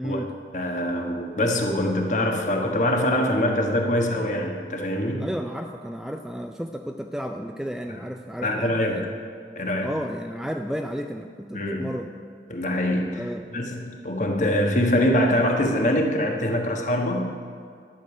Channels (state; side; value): normal; both; correlation 0.48